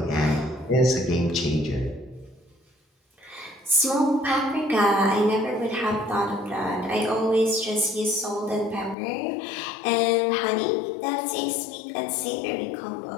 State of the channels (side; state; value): right; drops out; at 9.0 s